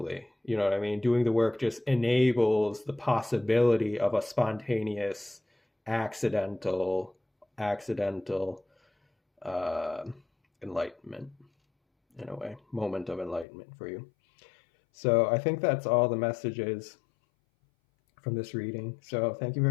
You know what I mean? Doing the work just enables the possibility of a spontaneous, accidental enlightenment, in a way, moment of enlightenment for you. So I think that's all the messages from this reading. So thank you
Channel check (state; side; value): drops out; right; at 13.5 s